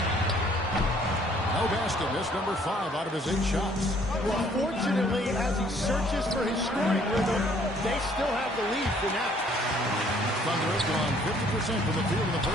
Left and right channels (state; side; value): normal; both; correlation 0.61